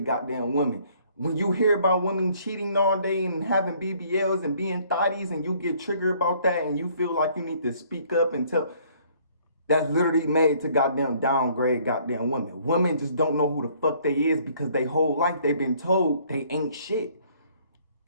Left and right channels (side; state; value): both; inverted; correlation -0.61